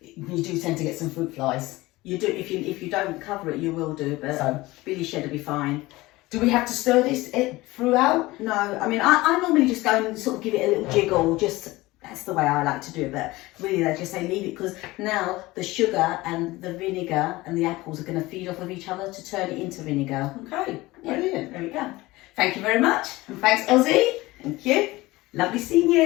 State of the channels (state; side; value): quieter; right; 19.8 dB